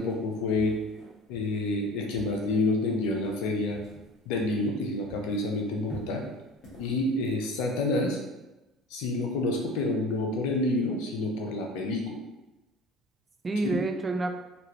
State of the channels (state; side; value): normal; both; correlation 0.39